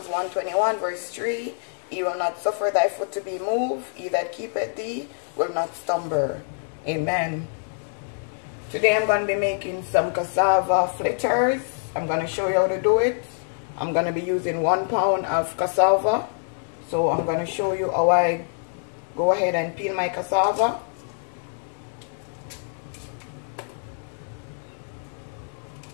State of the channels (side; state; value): right; silent; digital silence